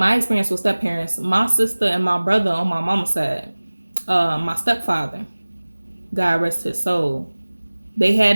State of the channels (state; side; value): inverted; both; correlation -1.00